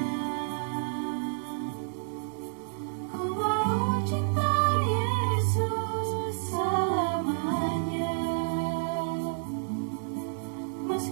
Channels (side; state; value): left; silent; 57 dB below the other